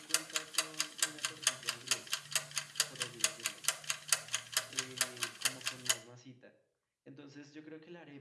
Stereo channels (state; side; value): identical; both; correlation 1.00